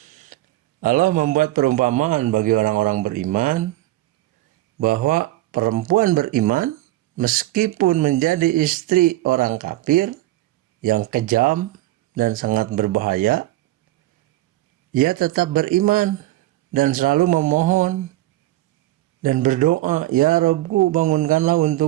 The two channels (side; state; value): left; quieter; 16.4 dB